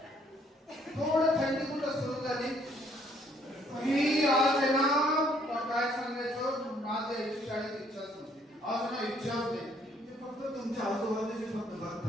थोडं थंडी कुठं सुरू झाली ही आज आहे ना, काय सांगायचं, माझ्या शाळेत इच्छाच नव्हती. आज ना इच्छाच नाही, ते फक्त तुमच्या आजूबाजूचे फक्त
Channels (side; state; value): both; normal; correlation 0.65